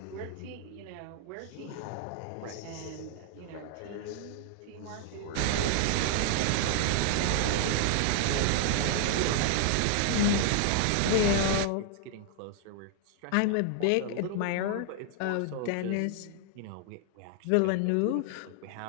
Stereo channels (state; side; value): different; both; correlation 0.00